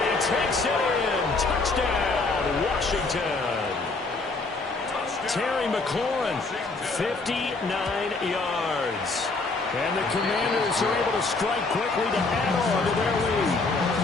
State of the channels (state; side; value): quieter; right; 3.6 dB